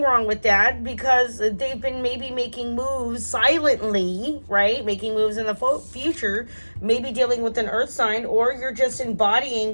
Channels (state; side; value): inverted; both; correlation -1.00